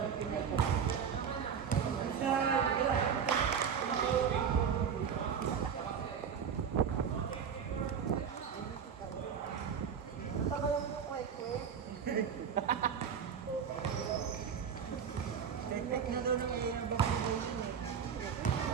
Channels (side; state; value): left; quieter; 7.3 dB